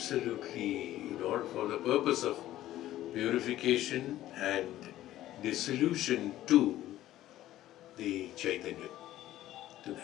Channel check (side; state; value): right; quieter; 14.0 dB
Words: for the purpose of purification and dissolution to the Chaitanya, to